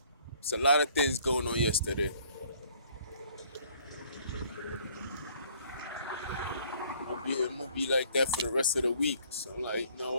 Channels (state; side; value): inverted; both; correlation -0.60